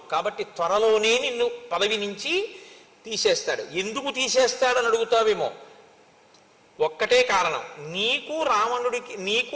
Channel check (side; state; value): both; identical; correlation 1.00